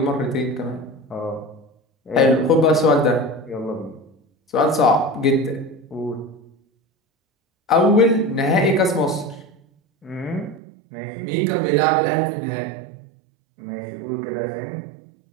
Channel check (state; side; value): drops out; left; at 10.6 s